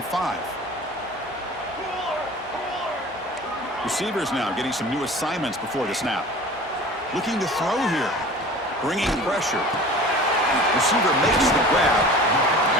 5. Receivers now getting some new assignments before the snap. Looking to throw here. Bringing pressure. Receiver makes the grab.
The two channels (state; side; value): normal; both; correlation 0.41